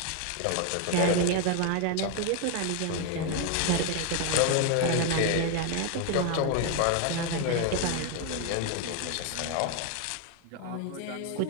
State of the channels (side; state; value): both; different; correlation 0.01